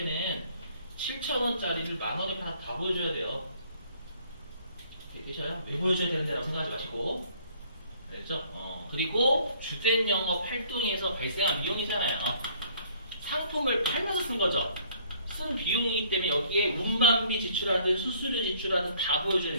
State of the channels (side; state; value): both; inverted; correlation -0.60